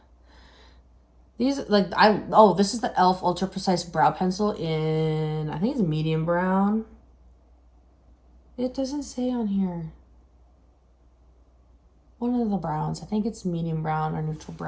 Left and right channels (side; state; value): both; identical; correlation 1.00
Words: these, like, this is the e.l.f. Ultra Precise Brow Pencil in, I think it's medium brown. It doesn't say on here. One of the browns. I think it's medium brown or neutral